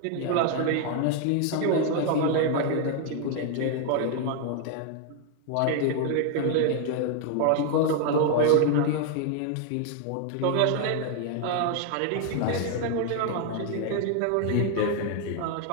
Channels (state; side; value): different; both; correlation 0.00